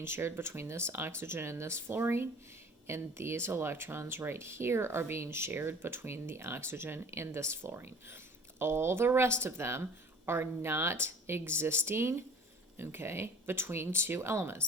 shared between this oxygen and this fluorine, and these electrons right here are being shared between the oxygen and this fluorine. All the rest of them are not existing, okay, between two elements.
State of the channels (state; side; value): normal; both; correlation 0.46